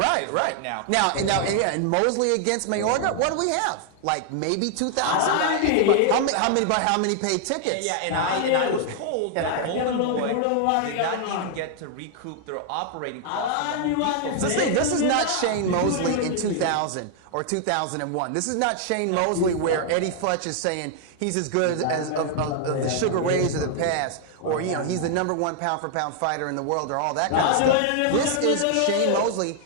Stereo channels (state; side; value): different; both; correlation 0.00